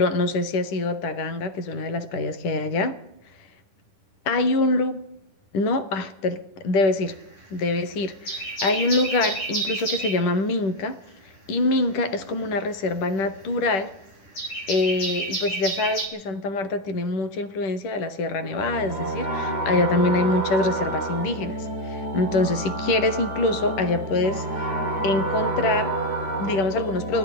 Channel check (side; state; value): right; late; 10 ms